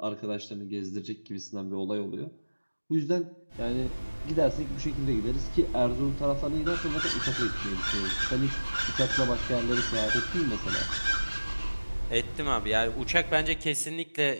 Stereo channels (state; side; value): inverted; both; correlation -1.00